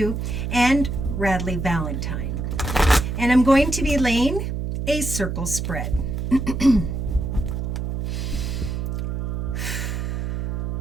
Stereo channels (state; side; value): noise; right; hum, 2 dB below the sound